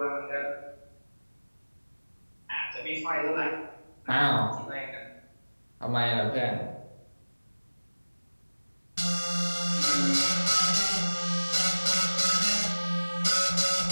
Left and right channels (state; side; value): inverted; both; correlation -1.00